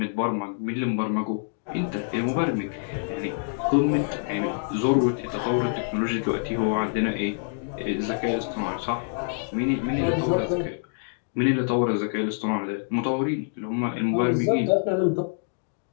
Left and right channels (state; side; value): silent; right; digital silence